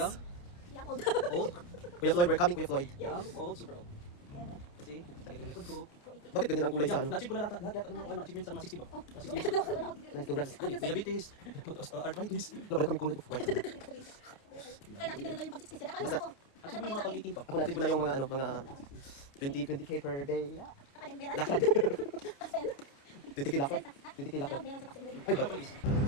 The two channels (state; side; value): late; right; 29 ms